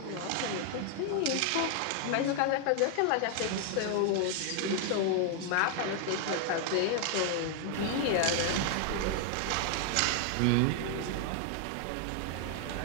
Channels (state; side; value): different; both; correlation 0.00